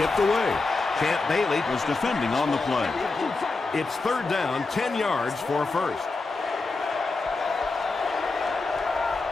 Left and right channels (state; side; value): quieter; right; 3.7 dB